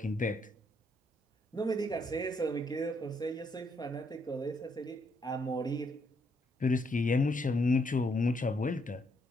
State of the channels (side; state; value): both; normal; correlation 0.74